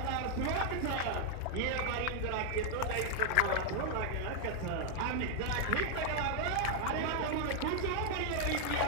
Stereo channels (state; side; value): different; both; correlation 0.00